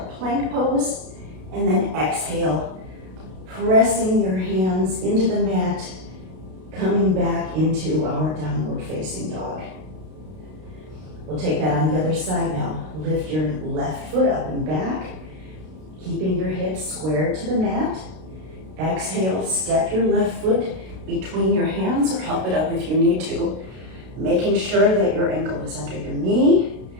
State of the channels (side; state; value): left; late; 32 ms